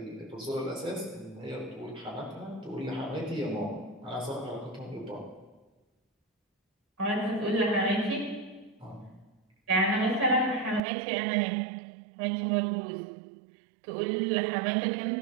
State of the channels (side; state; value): left; drops out; at 10.8 s